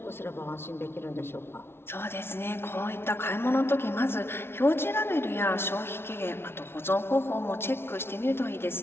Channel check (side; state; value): right; late; 0.12 ms